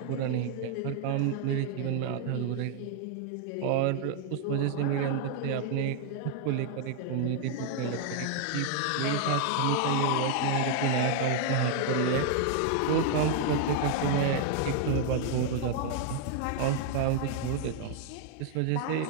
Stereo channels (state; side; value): different; both; correlation 0.00